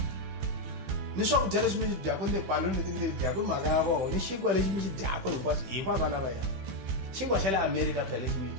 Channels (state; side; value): late; left; 16 ms